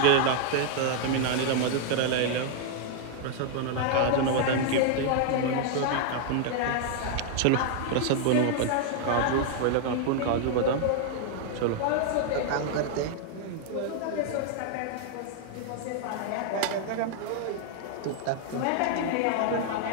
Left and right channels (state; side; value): different; both; correlation 0.00